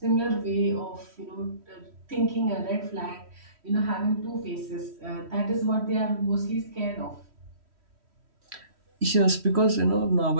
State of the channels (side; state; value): left; late; 3.1 ms